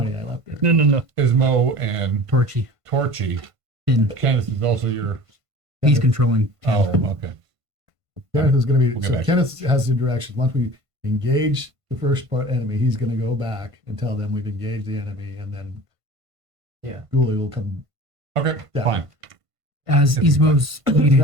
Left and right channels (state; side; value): late; left; 1.5 ms